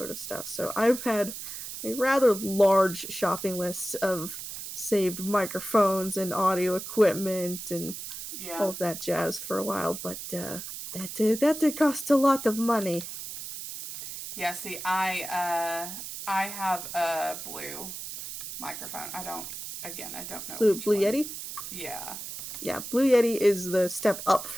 of stuff. So I've had a rather large shopping list of saved microphones and audio equipment and all of that jazz for a while, but that did cost a lot of money. Yeah, see, I have a blue microphone. I don't know. Blue Yeti? Yeah. Yeah, Blue Yeti is the step up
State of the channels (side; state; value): right; noise; hiss, 9 dB below the sound